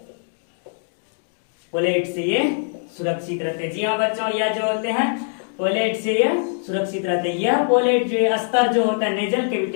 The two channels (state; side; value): silent; right; digital silence